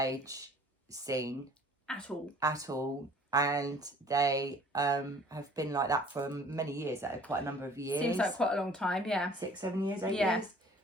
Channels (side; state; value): both; normal; correlation 0.52